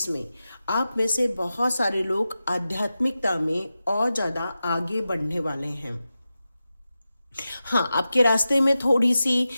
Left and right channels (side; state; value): both; inverted; correlation -0.93